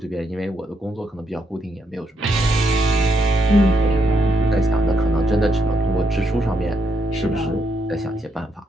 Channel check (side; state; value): both; normal; correlation 0.78